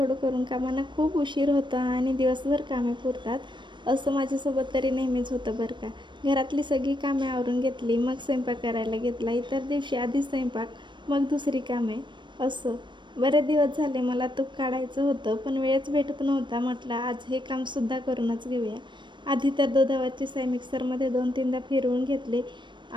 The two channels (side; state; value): left; late; 0.22 ms